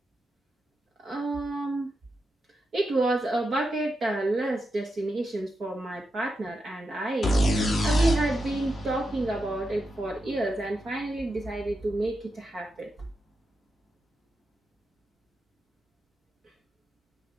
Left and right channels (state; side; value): normal; both; correlation 0.87